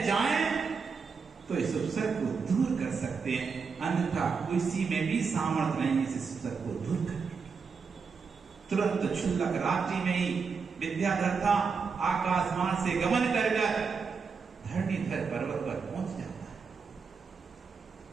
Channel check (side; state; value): left; quieter; 5.4 dB